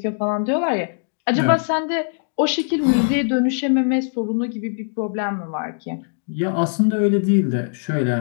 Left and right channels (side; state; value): right; silent; digital silence